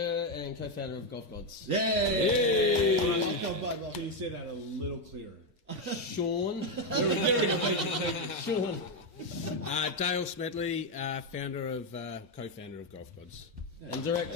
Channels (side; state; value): both; normal; correlation 0.06